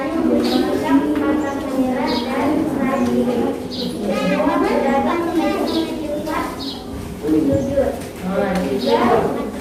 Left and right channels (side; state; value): both; identical; correlation 1.00